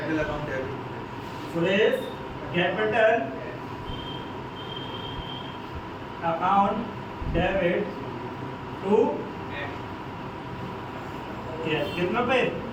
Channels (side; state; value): both; identical; correlation 1.00